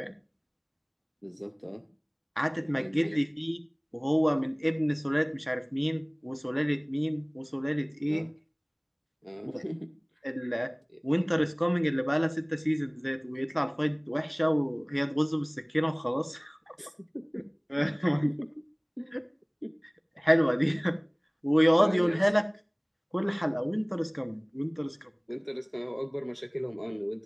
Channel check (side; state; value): both; identical; correlation 1.00